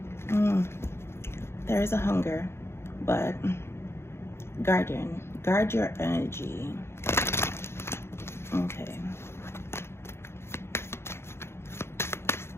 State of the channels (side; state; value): right; late; 0.12 ms